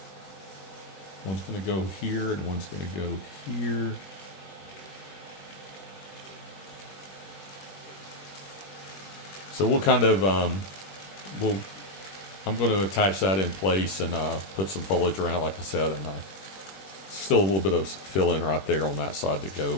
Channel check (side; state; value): right; late; 21 ms